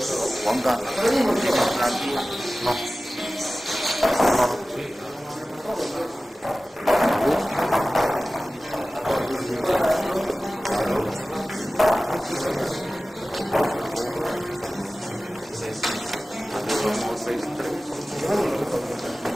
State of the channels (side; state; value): both; normal; correlation 0.97